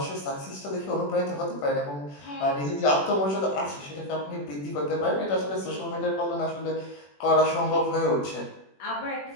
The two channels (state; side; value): late; right; 21 ms